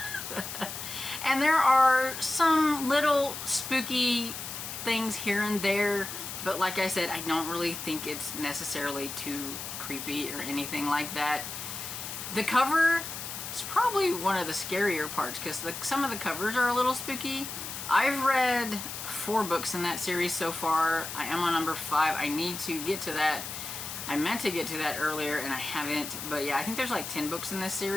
And there are some little spooky things here and there, but like I said, I don't really think it's necessarily too creepy or anything like that. The cover is probably one of the scarier parts because some of the covers are a little spooky. I've read 4 books in that series so far. I am on number 5. I need to get to that. I meant to get to that earlier and I haven't, but yeah, I think there's like 10 books in this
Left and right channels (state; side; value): noise; left; hiss, 7 dB below the sound